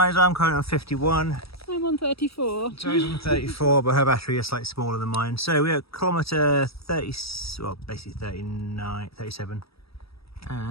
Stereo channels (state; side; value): late; right; 0.77 ms